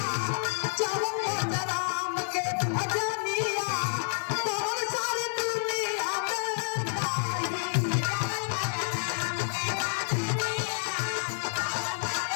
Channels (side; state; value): right; silent; digital silence